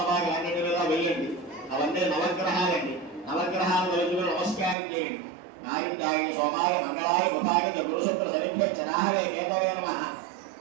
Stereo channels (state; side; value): drops out; left; at 4.8 s